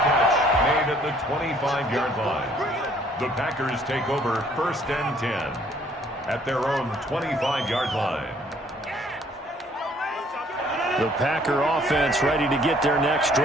catch made at the 25-yard line. The Packers take over 1st and 10 at their own 25-yard line. The Packer offense ready to get their next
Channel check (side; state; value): both; normal; correlation 0.61